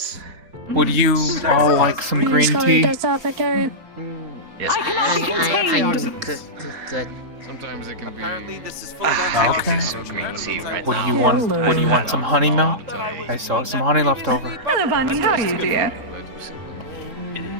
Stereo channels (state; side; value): late; left; 3.8 ms